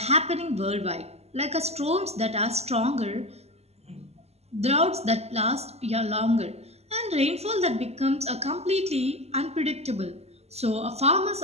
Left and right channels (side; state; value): left; late; 0.30 ms